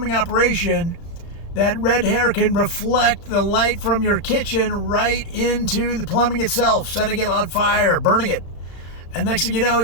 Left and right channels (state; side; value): late; right; 35 ms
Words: operation, that red hair can reflect the light from your kitchen right into the plumbing itself, setting it on fire, burning it. And next thing you know,